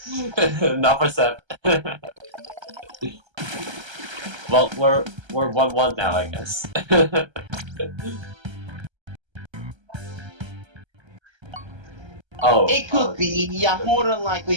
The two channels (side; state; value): left; late; 1.3 ms